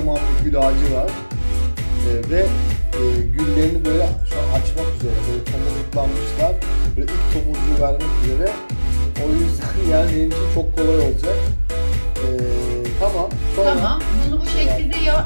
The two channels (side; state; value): both; inverted; correlation -1.00